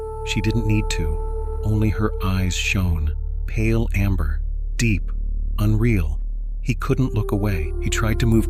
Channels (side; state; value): both; identical; correlation 1.00